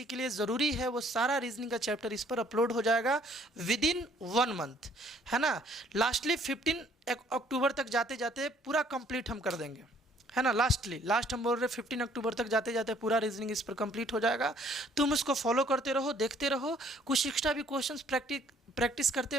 के लिए ज़रूरी है वो सारा रीजनिंग का चैप्टर इस पर अपलोड हो जाएगा विदिन 1 मंथ, है ना। लास्टली 15 अक्टूबर तक जाते जाते पूरा कंप्लीट हम कर देंगे, है ना। लास्ट हम बोल रहे 15 अक्टूबर तक जाते जाते पूरा रीजनिंग इस पर कंप्लीट हो जाएगा। तुम उसको फॉलो करते रहो, देखते रहो, कुछ एक्स्ट्रा भी क्वेश्चंस प्रैक्टिस करते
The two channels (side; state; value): both; normal; correlation 0.61